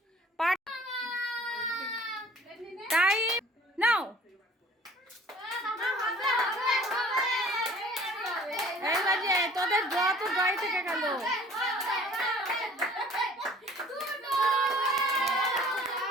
পার্ট টাইম নাও। এই বাজে তোদের ড্র তো ড্রই থেকে গেল।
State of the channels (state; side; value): normal; both; correlation 0.51